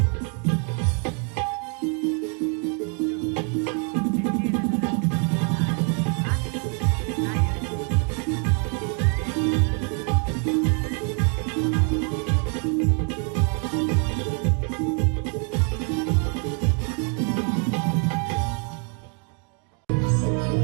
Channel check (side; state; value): left; quieter; 38.8 dB